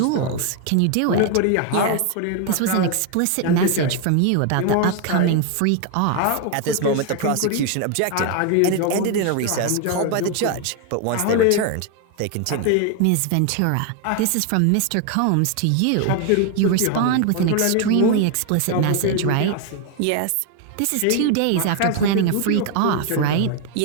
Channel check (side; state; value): both; different; correlation 0.01